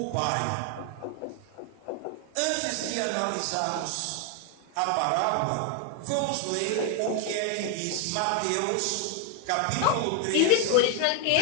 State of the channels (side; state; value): both; different; correlation 0.00